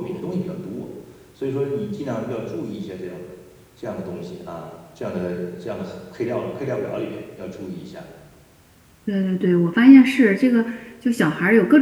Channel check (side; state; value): both; identical; correlation 1.00